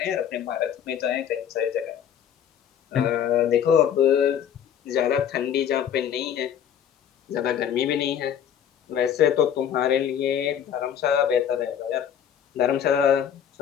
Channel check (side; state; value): right; quieter; 9.0 dB